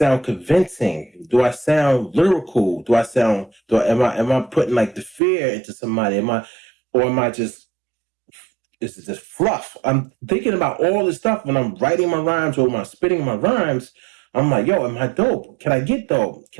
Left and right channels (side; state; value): left; drops out; at 5.2 s